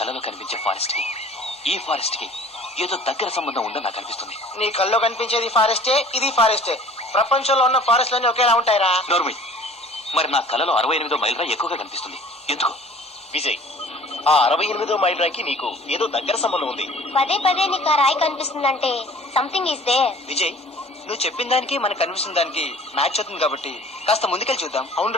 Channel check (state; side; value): normal; both; correlation 0.49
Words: కనిపించే ఫారెస్ట్ కి ఈ ఫారెస్ట్ కి ఏదో దగ్గర సంబంధం ఉందని నాకు అనిపిస్తుంది. నీ కల్లో కనిపించేది ఫారెస్టే, ఇది ఫారెస్టే. ప్రపంచంలో ఉన్న ఫారెస్ట్లన్నీ ఒకేలా ఉంటాయిరా. నోర్మి, మరి నా కలలో 68వ మైల్ రా ఎక్కువగా కనిపిస్తుంది. ఎందుకు? విజయ్, ఆ 68వ మైల్ రాయికి నీకు ఏదో దగ్గర సంబంధం ఉంది. పదే పదే నీకు ఆ రాయి కనిపిస్తుందంటే సంథింగ్ ఈస్ దేర్. విజయ్, నువ్వు చెప్పిన దానికి మనకు కనిపిస్తున్న దానికి మ్యాచ్ అవుతుంది కాబట్టి కాస్త ముందుకెళ్ళి చూద్దాం.